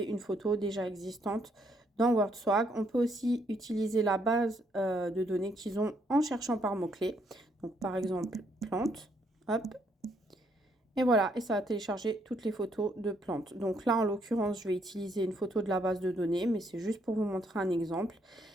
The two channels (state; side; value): normal; both; correlation 0.72